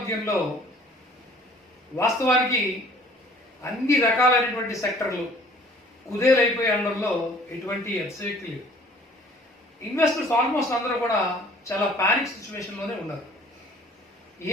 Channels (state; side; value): normal; both; correlation 0.54